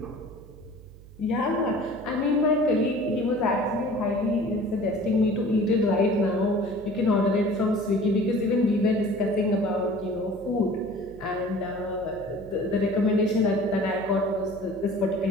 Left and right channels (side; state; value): right; noise; hum, 20 dB below the sound